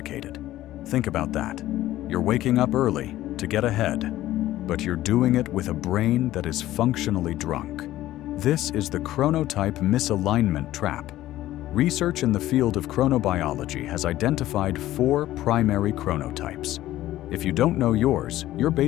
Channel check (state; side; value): quieter; right; 14.7 dB